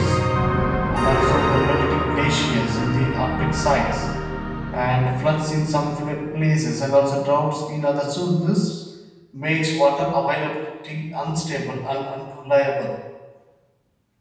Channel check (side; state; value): both; identical; correlation 1.00